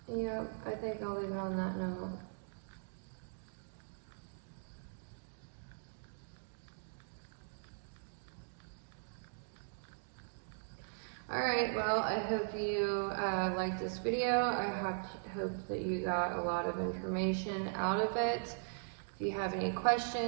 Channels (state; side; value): silent; left; digital silence